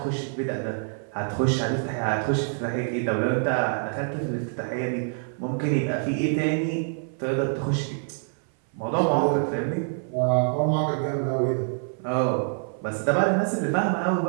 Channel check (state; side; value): silent; left; 58 dB below the other